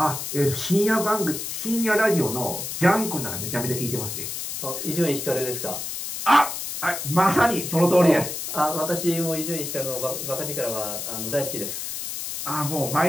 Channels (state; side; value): noise; left; hiss, 5 dB below the sound